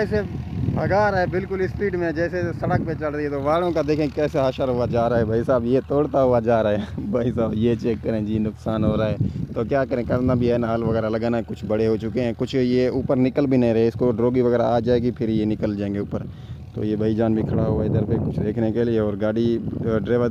भगा रहा है बिल्कुल स्पीड में, जैसे सड़क पे चल रही है। तो वालों का देखें कैसे हशर हुआ जा रहा है भाई साहब, ये तोड़ता हुआ जा रहा है भाई साहब। ये चेक करें जी, नुकसान हो रहा है। तो क्या करें, करना भी है ना, हल वगैरह लगाना है। कुछ बड़े हो चुके हैं, कुछ ये ऊपर निकल भी नहीं रहे। इसको ड्रोगी वगैरह आ जाएगी, फिर ये निकल जाएंगे ऊपर। तो ये भाईजान भी खड़ा हुआ है इधर पे कुछ देखने के लिए। और गाड़ी ड्राइवर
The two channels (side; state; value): both; identical; correlation 1.00